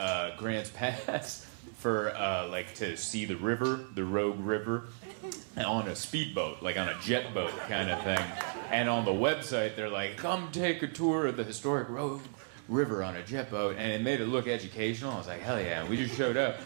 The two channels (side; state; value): left; silent; digital silence